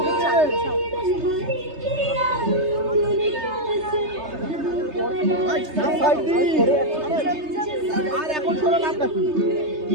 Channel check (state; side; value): late; left; 3.3 ms